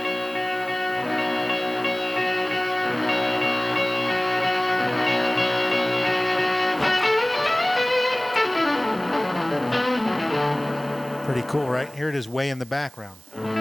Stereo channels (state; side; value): noise; right; hiss, 23 dB below the sound